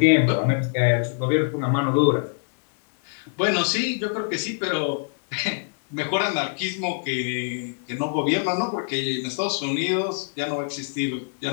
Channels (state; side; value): silent; right; digital silence